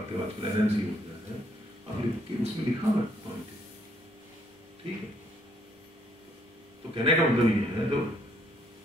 हो, आजकल एनएमसी हो जाता है, आप उसमें लिखा हुआ पॉइंट, ठीक है। तो कहने का मतलब ये है, तो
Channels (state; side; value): normal; both; correlation 0.68